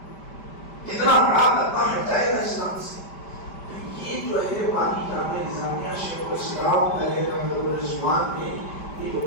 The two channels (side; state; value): right; late; 5.1 ms